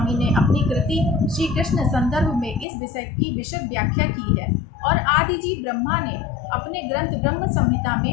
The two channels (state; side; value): drops out; right; at 2.7 s